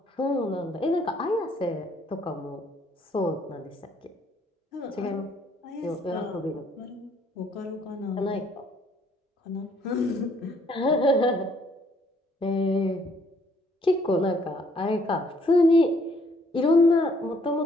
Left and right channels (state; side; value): normal; both; correlation 0.65